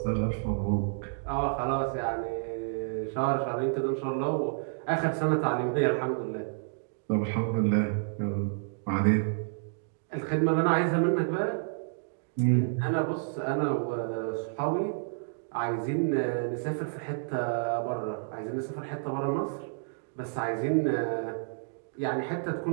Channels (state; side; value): silent; left; digital silence